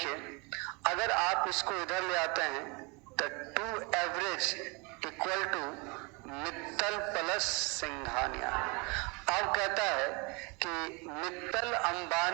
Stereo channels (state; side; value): quieter; left; 29.3 dB